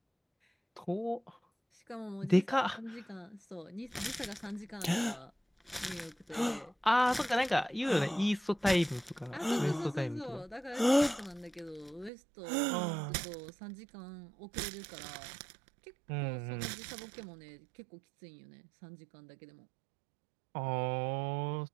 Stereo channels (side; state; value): left; drops out; at 12.1 s